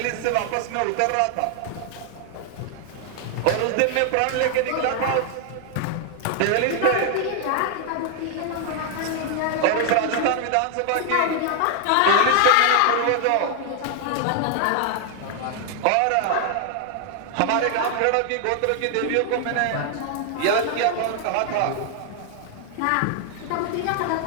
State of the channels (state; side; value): different; both; correlation 0.00